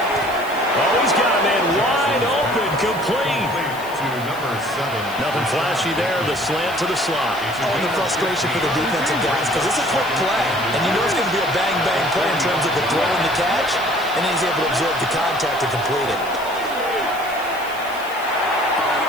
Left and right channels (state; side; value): noise; left; hiss, 18 dB below the sound